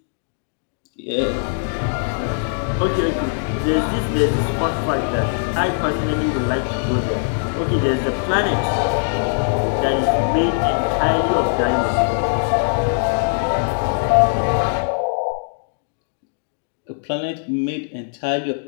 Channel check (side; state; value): right; silent; digital silence